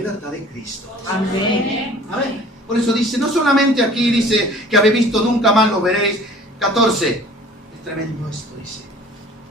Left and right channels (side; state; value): both; normal; correlation 0.48